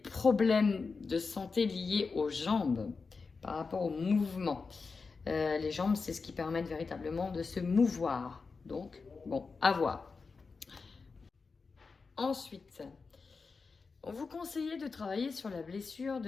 de santé liés aux jambes par rapport au mouvement. Les jambes, c'est ce qui permet véritablement de se mouvoir. Donc, bon, à voir. Ensuite, on vous conseille de travailler sur la blessure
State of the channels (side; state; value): right; quieter; 4.6 dB